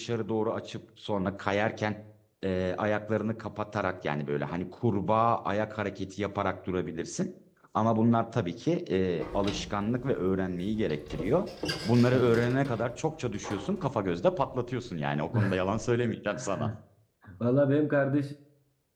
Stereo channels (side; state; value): both; identical; correlation 1.00